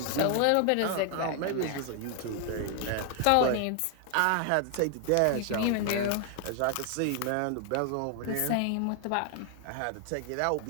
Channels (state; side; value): different; both; correlation 0.00